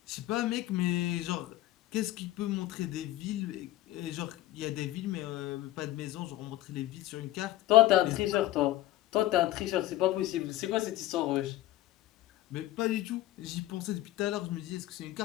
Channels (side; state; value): right; quieter; 15.3 dB